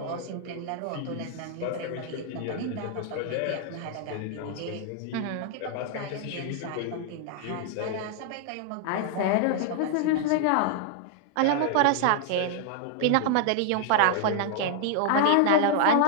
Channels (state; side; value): different; both; correlation 0.00